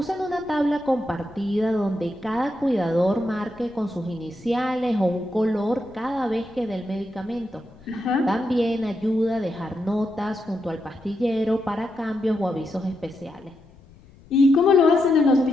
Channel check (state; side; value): noise; left; rumble, 25 dB below the sound